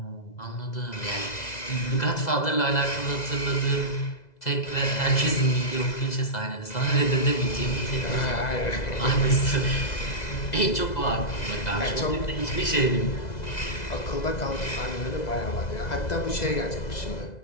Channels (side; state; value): right; late; 2.0 ms